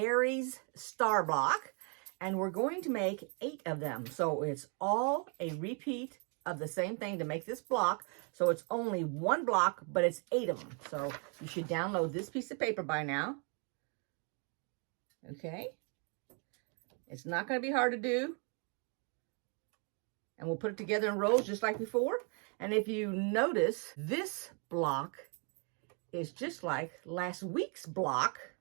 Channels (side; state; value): left; quieter; 38.2 dB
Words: star block, and we're going to make 8 of them. So it's all a repeat of the same thing to make this block. So it's only one block, but it's 8 of them. So you should download this piece of paper by now. Okay. It's not going to be hard to do. And we'll put it together in rows just like before. And if you notice, this block is just like last week's block.